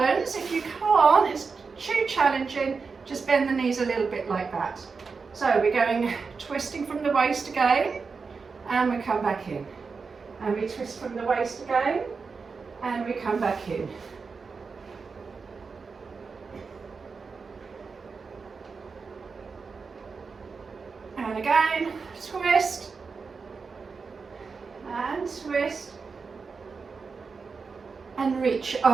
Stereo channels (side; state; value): left; quieter; 4.9 dB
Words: If you can't, it's too challenging, just bend the knees a little bit like that. So we're going twisting from the waist again, and we come back in. And we twist from the waist again, and we come back in. And again, twist, and twist, and reach